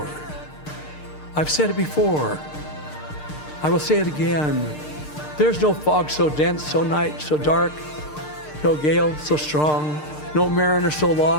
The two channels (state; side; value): late; right; 6.6 ms